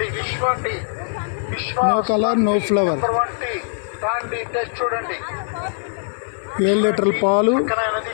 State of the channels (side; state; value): right; silent; digital silence